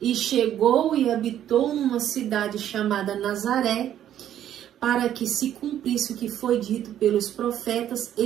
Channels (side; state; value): left; quieter; 11.0 dB